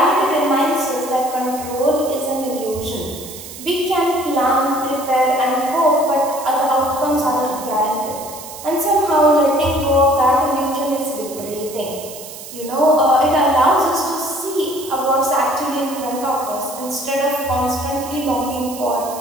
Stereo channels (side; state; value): right; noise; hiss, 13 dB below the sound